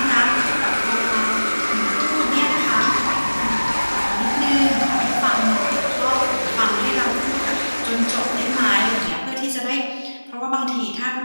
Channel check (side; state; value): both; inverted; correlation -1.00